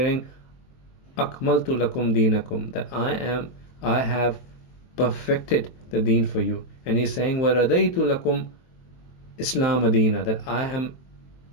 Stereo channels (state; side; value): late; right; 23 ms